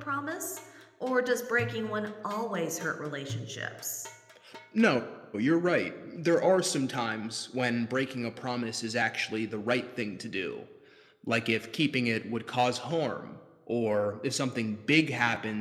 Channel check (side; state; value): both; identical; correlation 1.00